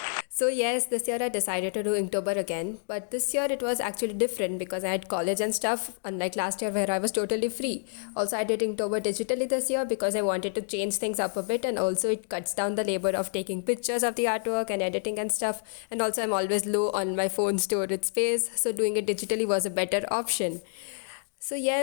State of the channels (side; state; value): right; silent; digital silence